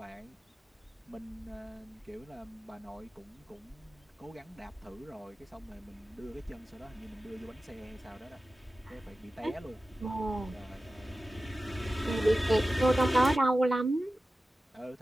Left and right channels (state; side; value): normal; both; correlation 0.95